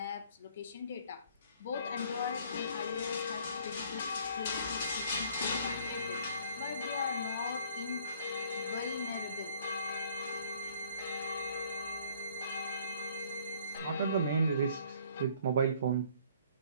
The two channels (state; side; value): inverted; both; correlation -0.58